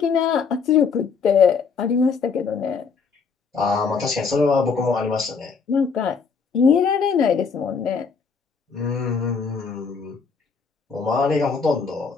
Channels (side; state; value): right; quieter; 5.4 dB